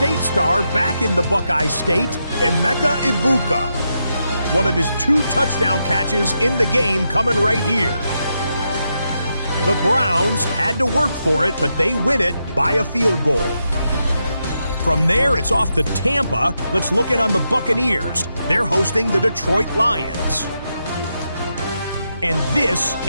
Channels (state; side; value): inverted; both; correlation -0.84